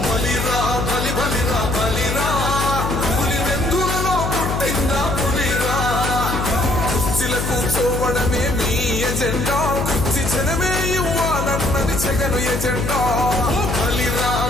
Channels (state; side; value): noise; left; hum, 2 dB below the sound